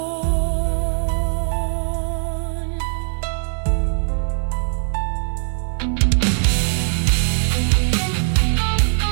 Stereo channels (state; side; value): silent; left; digital silence